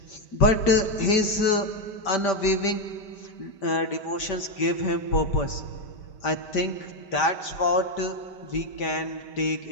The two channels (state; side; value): late; right; 5.1 ms